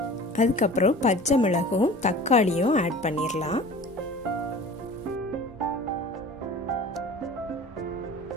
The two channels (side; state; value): both; normal; correlation 0.41